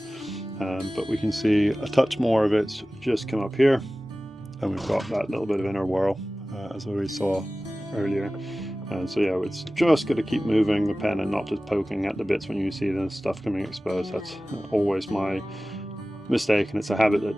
But we can see a touch more of it's just come up here, and we've got that little bit of inner whorl, as we saw earlier. So yeah, it's just got to keep moving the pen and not just poking at the bits when you see the stuff coming exposed. That's always my mistake, and it's a habit that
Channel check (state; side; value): normal; both; correlation 0.97